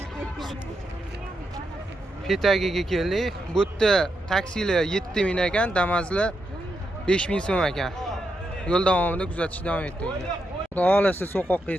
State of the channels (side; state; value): both; normal; correlation 0.83